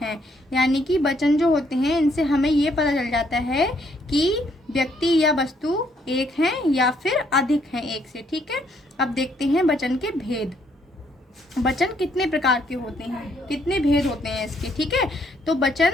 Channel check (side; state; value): both; normal; correlation 0.70